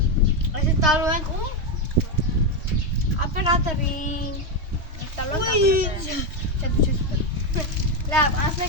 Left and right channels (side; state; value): left; late; 3.1 ms